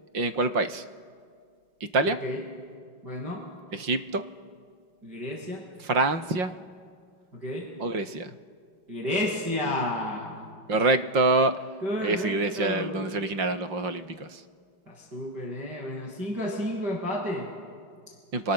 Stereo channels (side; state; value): left; late; 5.6 ms